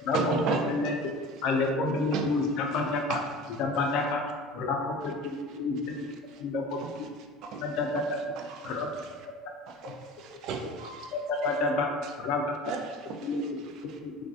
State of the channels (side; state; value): both; normal; correlation 0.38